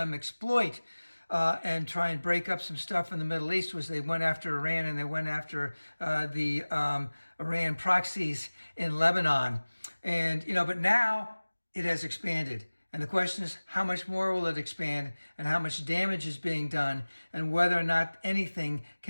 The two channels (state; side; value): inverted; both; correlation -1.00